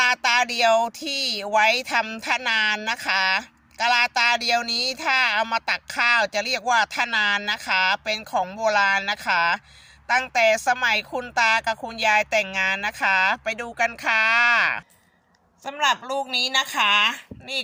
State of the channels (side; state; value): both; identical; correlation 1.00